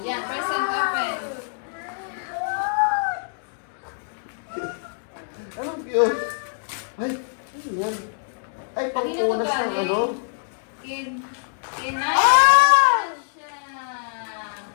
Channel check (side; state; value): right; silent; digital silence